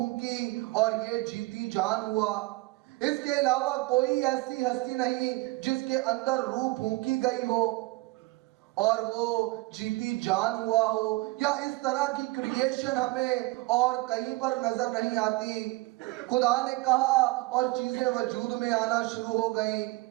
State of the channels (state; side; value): quieter; left; 21.9 dB